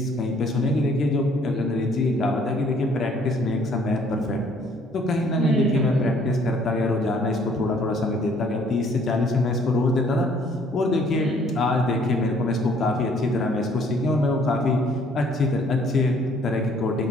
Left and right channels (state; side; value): normal; both; correlation 0.61